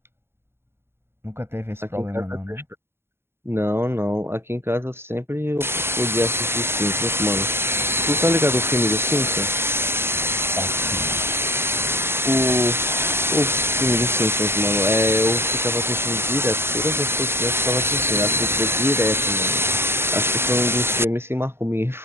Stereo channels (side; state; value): left; late; 0.12 ms